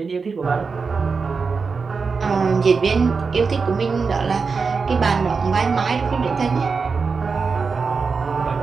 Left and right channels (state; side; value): quieter; left; 4.9 dB